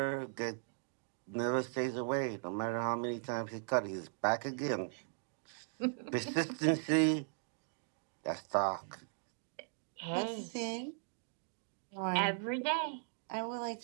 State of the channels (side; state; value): left; silent; digital silence